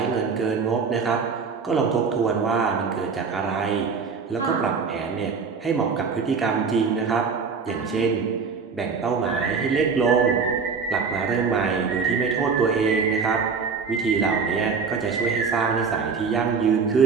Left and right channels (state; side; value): quieter; left; 5.3 dB